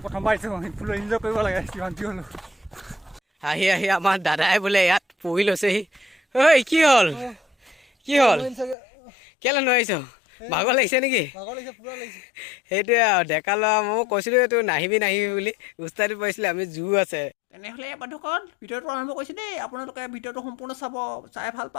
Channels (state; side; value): drops out; right; at 8.8 s